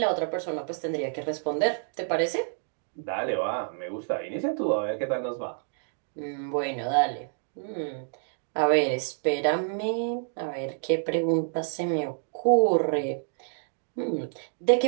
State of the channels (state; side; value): silent; left; digital silence